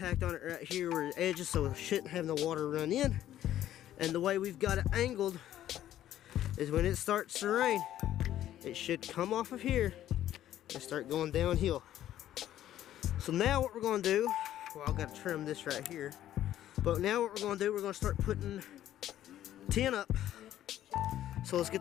on it right here where the edges, so it shouldn't have no water run in. And the way we've got it angled is when it starts to rain, it should come off of here and start going downhill. So now what we're going to do, well, I've got to trim this right here. But now what we're going to do, we're going to start putting tin up. So let's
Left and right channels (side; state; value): right; quieter; 12.2 dB